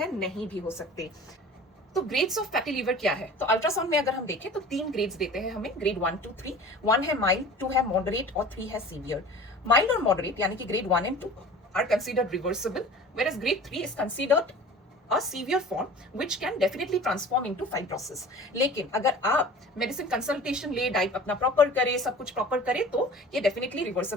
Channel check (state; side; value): normal; both; correlation 0.42